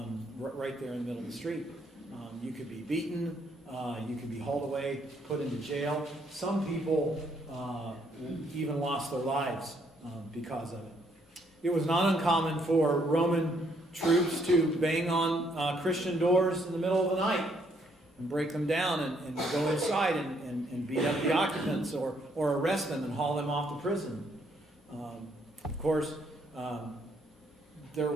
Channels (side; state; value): both; normal; correlation 0.70